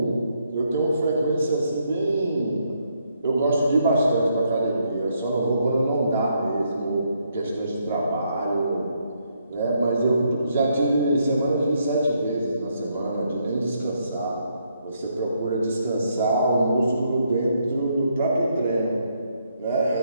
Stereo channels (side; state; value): both; inverted; correlation -0.75